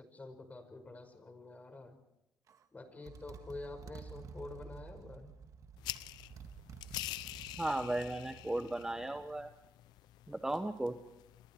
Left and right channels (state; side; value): normal; both; correlation 0.83